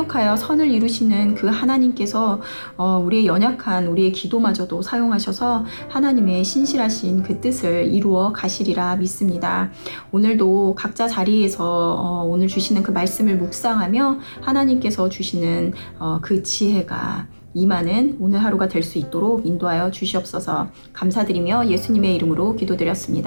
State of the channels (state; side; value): inverted; both; correlation -1.00